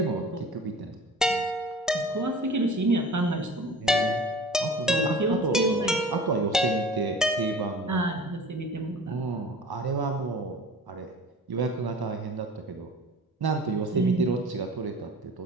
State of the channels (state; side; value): normal; both; correlation 0.42